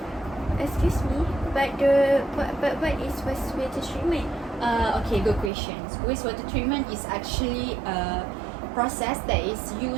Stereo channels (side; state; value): left; drops out; at 5.5 s